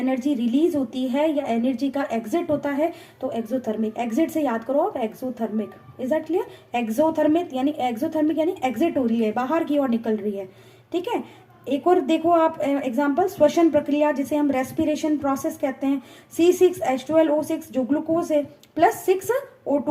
रिलीज होती है या एनर्जी का एग्जिट होता है तो एक्सोथर्मिक, एग्जिट से याद करो आप exothermic, is that clear? Exothermic यानी एग्जिट हो रही है, बाहर की ओर निकल रही है, ठीक है। एक और देखो आप एग्जांपल, श्वसन प्रक्रिया जिसे हम रेस्पिरेशन प्रोसेस कहते हैं, C6H12O6 जो ग्लूकोज है प्लस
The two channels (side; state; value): both; identical; correlation 1.00